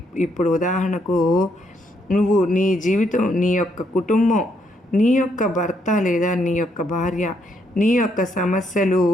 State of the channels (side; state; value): both; normal; correlation 0.74